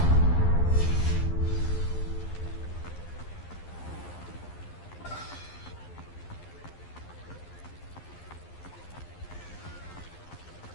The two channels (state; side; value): late; right; 11 ms